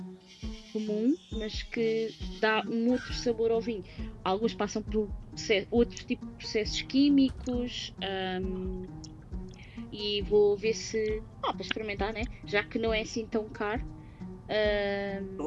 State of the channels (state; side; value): identical; both; correlation 1.00